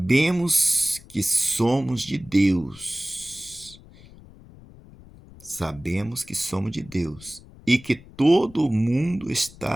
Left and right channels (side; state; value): left; noise; rumble, 21 dB below the sound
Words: que somos de Deus. Sabemos que somos de Deus e que todo mundo